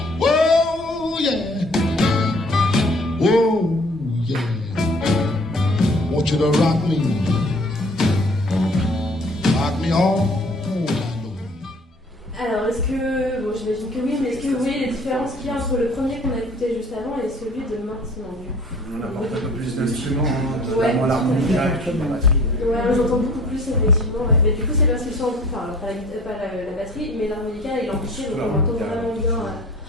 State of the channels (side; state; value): both; normal; correlation 0.51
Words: Oh yeah. Oh yeah. Want you to rock me. Rock me all night long. Alors, est-ce que. Bon, j'imagine que oui, mais est-ce que vous voyez les différences qu'il y a entre le premier qu'on a écouté juste avant et celui de maintenant du coup? On apporte un peu plus d'instruments, Ouais. notamment l'harmonica et puis la batterie. Ouais, j'entends beaucoup plus effectivement. Ouais. Mais du coup, c'est parce qu'ils sont. Enfin, pas la batterie, mais l'harmonica et l'amplifié, donc on entend vraiment bien.